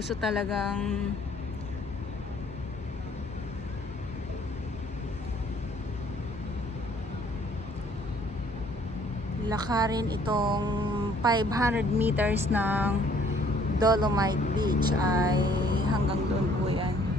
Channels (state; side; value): normal; both; correlation 0.60